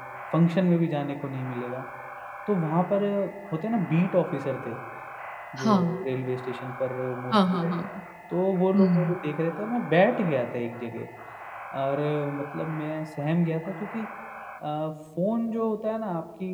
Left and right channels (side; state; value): both; identical; correlation 1.00